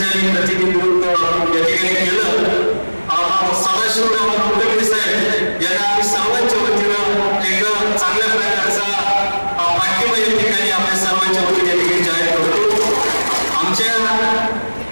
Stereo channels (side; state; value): both; inverted; correlation -1.00